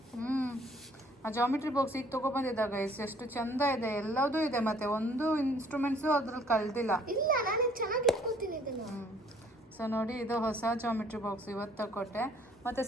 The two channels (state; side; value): normal; both; correlation 0.59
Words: ಆ ಜಾಮಿಟ್ರಿ ಬಾಕ್ಸ್ ಈಗ ತಗೊಬಂದಿದ್ದಾಗ ಎಷ್ಟು ಚಂದ ಇದೆ, ಎಲ್ಲದೂ ಇದೆ, ಮತ್ತೆ ಒಂದು ಇನ್ಸ್ಟ್ರೂಮೆಂಟ್ಸು ಅದ್ರಲ್ಲಿ ಕಳ್ದಿಲ್ಲ. ಇಲ್ಲ ನಾನು ಚೆನ್ನಾಗಿ ಇಟ್ಕೊತೀನಿ ಇದನ್ನ. ಸೊ ನೋಡಿ, ಇದು ಹೊಸ ಜಾಮಿಟ್ರಿ ಬಾಕ್ಸ್ ಇವತ್ತು ತಗೊಟ್ಟೆ, ಮತ್ತೆ